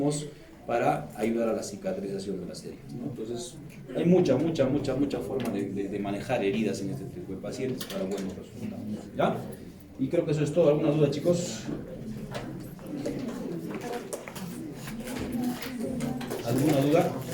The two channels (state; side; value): identical; both; correlation 1.00